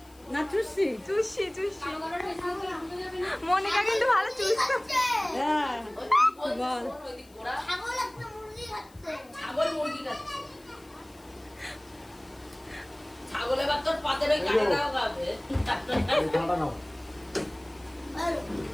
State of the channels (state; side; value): noise; left; hiss, 27 dB below the sound